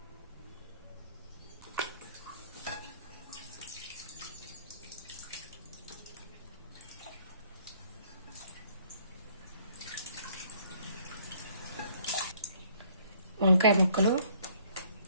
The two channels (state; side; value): inverted; both; correlation -0.61